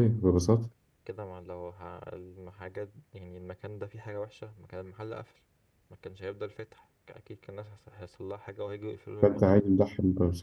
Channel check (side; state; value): both; identical; correlation 1.00